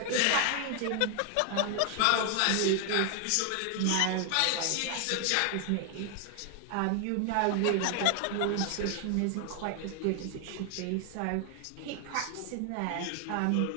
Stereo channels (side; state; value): both; different; correlation 0.00